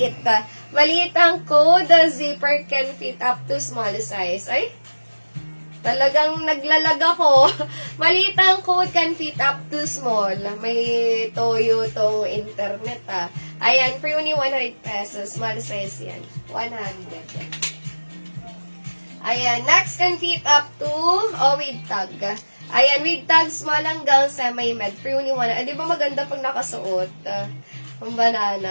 Maliit ang code, the zipper can fit up to small size. Ay, talagang naglalag ako. Maliit ang code can fit up to small. May toyo tong internet Ayan, for only 100 pesos. Small size yan. 100. Ayan, next can fit up to, with tag. Ayan, with tag, small hanggang semi-med. For only 100. Di ba maganda pag nakasuot? Ang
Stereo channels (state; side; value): inverted; both; correlation -1.00